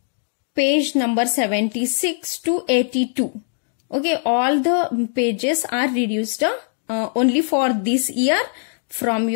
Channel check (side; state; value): right; silent; digital silence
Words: page number 76 to 82. Okay, all the pages are reduced only for this year from